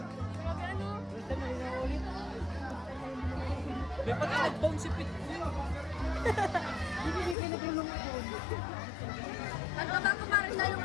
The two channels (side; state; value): right; drops out; at 7.4 s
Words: May pagka-nag-bounce si Pit. Ano ba ako parang